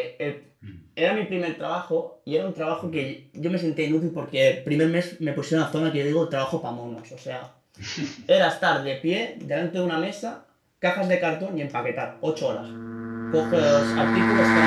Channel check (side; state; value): both; identical; correlation 1.00